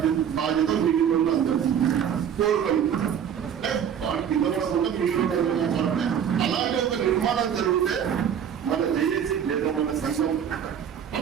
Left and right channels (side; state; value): left; quieter; 8.5 dB